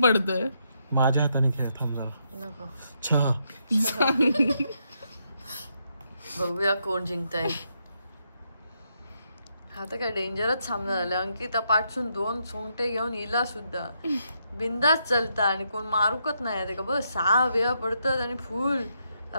पडतोय. माझ्या हाताने खेळ. थांब जरा. नको. छा. बघूया कोण जिंकताय. आता काय डेंजरच सामना झाला. अंकिता पाठसून 2 सोंगटे घेऊन हिला सुद्धा बिंदास चलता आणि कोण मारूकच नाही ते का बस 6 वेळा पडतात आणि फुल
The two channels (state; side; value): inverted; both; correlation -0.79